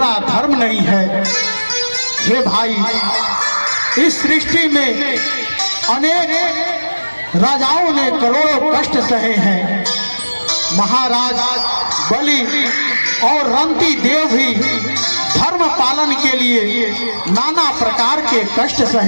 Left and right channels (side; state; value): both; inverted; correlation -1.00